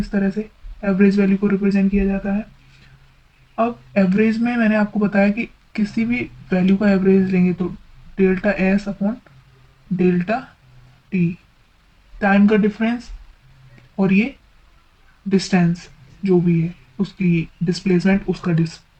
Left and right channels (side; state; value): both; identical; correlation 1.00